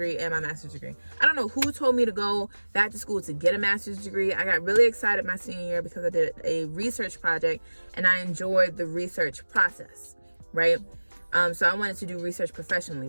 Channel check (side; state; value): both; inverted; correlation -1.00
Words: and my master's degree. I don't know who told me to go back to school to get a master's degree. I got really excited my senior year because I did a research project and I enjoyed the research process, right? So I wanted to do research professionally,